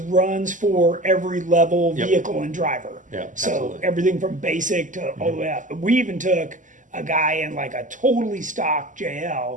for every level, Yep. vehicle, and driver. Yeah, So absolutely. everything from basic to all the way up. We even took a guy in like a totally stock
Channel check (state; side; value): late; left; 0.37 ms